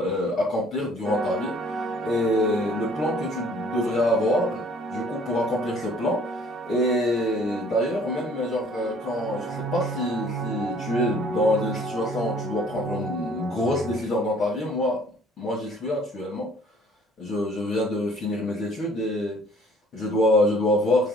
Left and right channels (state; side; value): normal; both; correlation 0.56